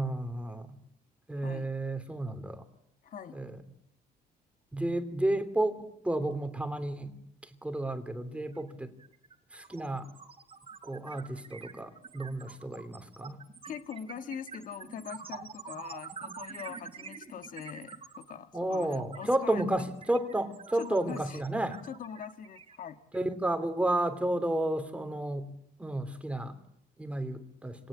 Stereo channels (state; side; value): normal; both; correlation 0.85